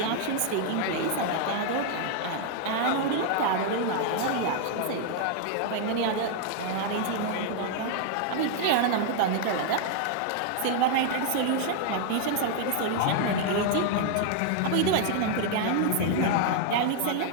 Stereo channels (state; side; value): different; both; correlation 0.00